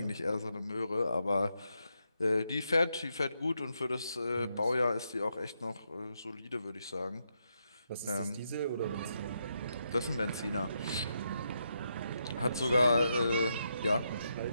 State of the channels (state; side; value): inverted; both; correlation -0.82